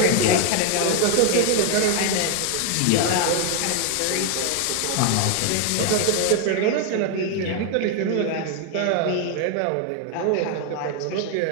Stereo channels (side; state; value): both; different; correlation 0.00